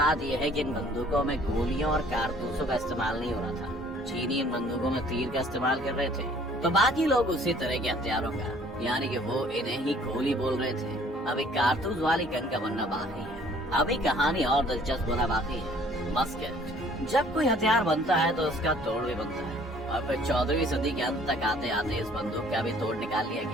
यह है कि इन बंदूकों में गोलियों और कारतूसों का इस्तेमाल नहीं हो रहा था। चीनी इन बंदूकों में तीर का इस्तेमाल कर रहे थे, तो बाकी लोग उसी तरह के हथियारों का, यानी कि वो इन्हें ही गोली बोल रहे थे। अभी कारतूस वाली गन का बनना बाकी है। अभी कहानी और दिलचस्प होना बाकी है। मस्केट। जब कोई हथियार बनता है तो उसका तोड़ भी बनता है और फिर 14वीं सदी के अंत तक आते आते इस बंदूक का भी तोड़ निकाल लिया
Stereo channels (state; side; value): normal; both; correlation 0.56